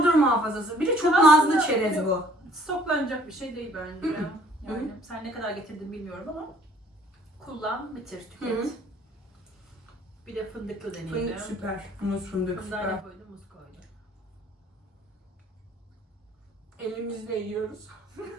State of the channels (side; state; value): both; normal; correlation 0.58